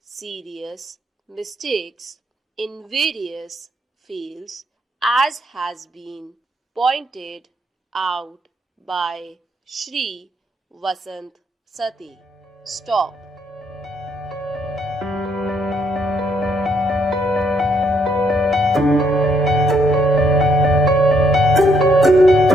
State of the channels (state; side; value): normal; both; correlation 0.72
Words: serious mistakes in various fields, as has been pointed out by Shri Vasant Sati. Stop.